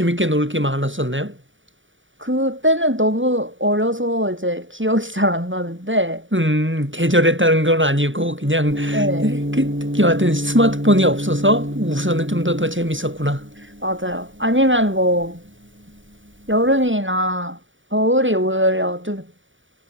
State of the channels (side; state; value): left; late; 0.56 ms